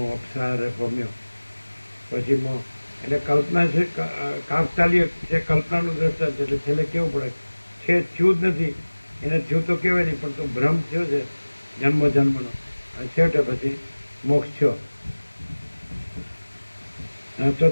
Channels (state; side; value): inverted; both; correlation -1.00